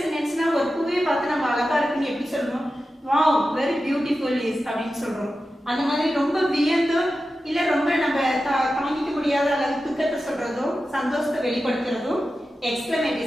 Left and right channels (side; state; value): both; normal; correlation 0.92